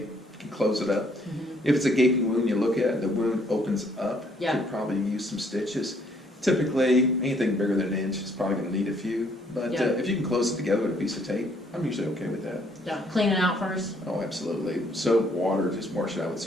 can close it up. If it's a gaping wound, you look at it, the wound opens up. Yeah. Could probably use some stitches. Typically, anything bigger than an inch is probably going to need a few. But Yeah. if you can close it together with a piece of tape, I'm usually okay with that. Yeah, clean it out first. Oh, absolutely. Soap, water, just wash it out with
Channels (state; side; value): normal; both; correlation 0.66